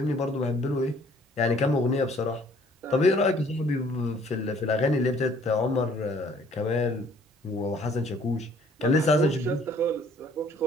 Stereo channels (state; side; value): normal; both; correlation 0.59